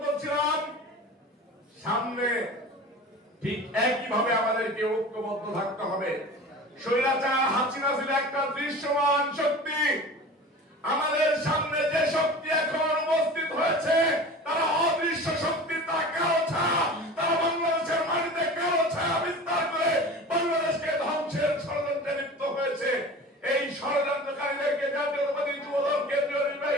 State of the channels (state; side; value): normal; both; correlation 0.37